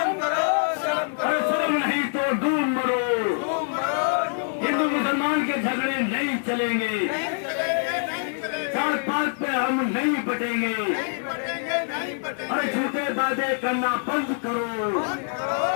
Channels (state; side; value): silent; right; digital silence